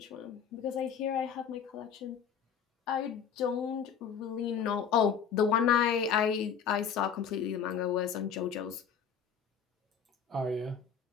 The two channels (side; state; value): right; quieter; 7.4 dB